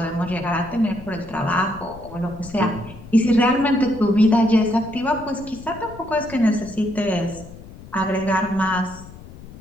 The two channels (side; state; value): left; noise; rumble, 17 dB below the sound